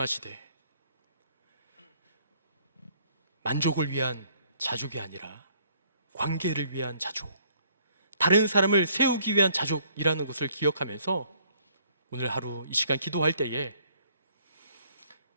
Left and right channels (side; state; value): both; inverted; correlation -0.63